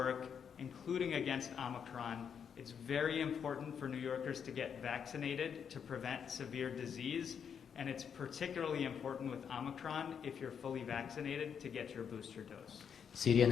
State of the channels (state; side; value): quieter; right; 7.4 dB